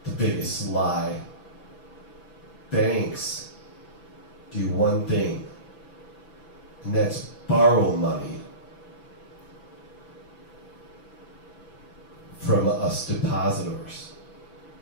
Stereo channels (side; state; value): right; late; 6.0 ms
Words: The biggest lie. Banks do one thing, and that's borrow money from us depositors